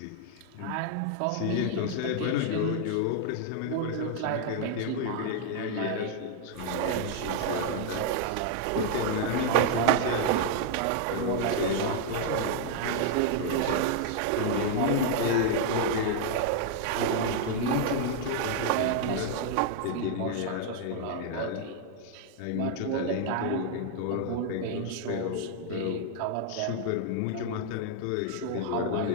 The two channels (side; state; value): both; different; correlation 0.00